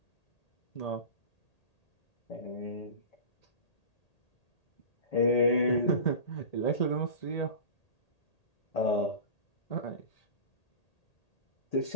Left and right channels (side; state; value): right; late; 1.8 ms